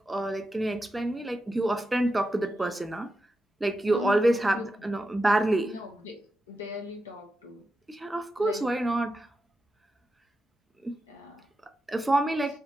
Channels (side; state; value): both; normal; correlation 0.89